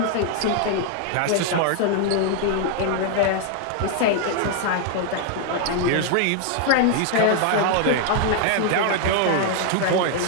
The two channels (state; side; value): different; both; correlation 0.00